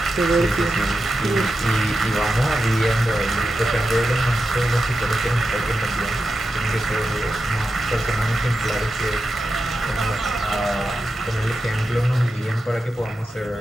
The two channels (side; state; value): both; normal; correlation 0.89